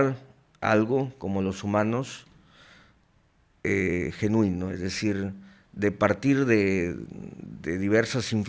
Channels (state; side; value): identical; both; correlation 1.00